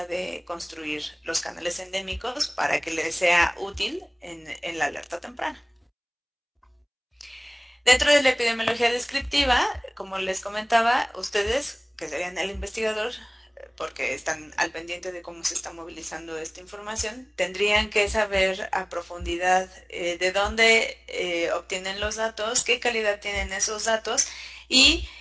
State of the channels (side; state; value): both; identical; correlation 1.00